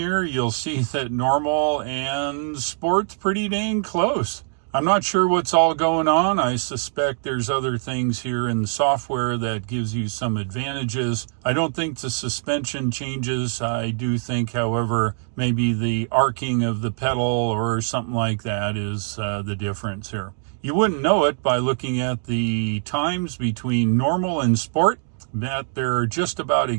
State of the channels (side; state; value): left; silent; 63 dB below the other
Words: you'll see that Normal and Sport's pretty dang close. I'm not sure what's all going on. I suspect there's other things here in the software that gives you some advantages. I don't think the suspension changes. I do think, however, maybe the arcing of the pedal or something like that is the difference here. You wouldn't know it by looking at the times between Normal and Sport, but they're just about